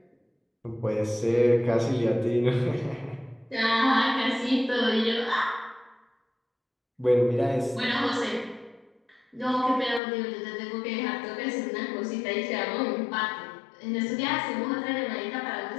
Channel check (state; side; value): drops out; right; at 10.0 s